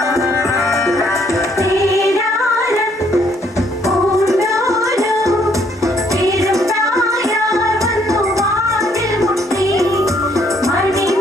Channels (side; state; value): both; normal; correlation 0.67